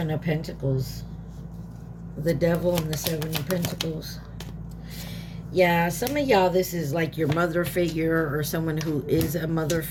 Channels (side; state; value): both; identical; correlation 1.00